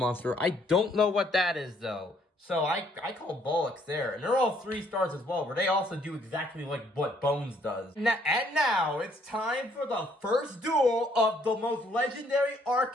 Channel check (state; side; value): normal; both; correlation 0.66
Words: I don't know what that is, though. So I call Bullocks there. And they're all 3 stars as well, where they also do exactly what Bones does. And now, it's time for the first duel of the most legendary arc